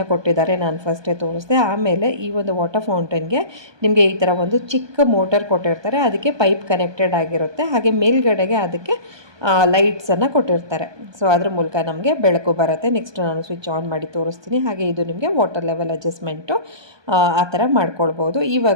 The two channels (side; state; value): left; late; 1.2 ms